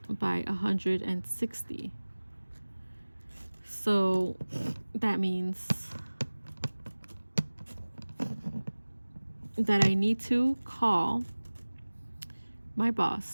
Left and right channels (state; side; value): inverted; both; correlation -1.00